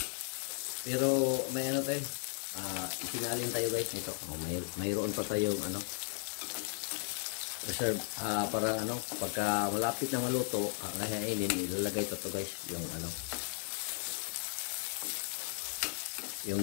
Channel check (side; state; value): right; silent; 54 dB below the other